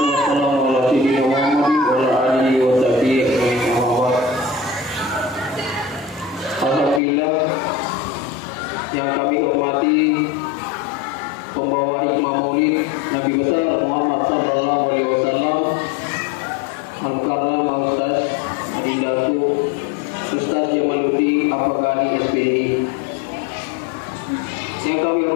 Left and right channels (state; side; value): drops out; right; at 7.0 s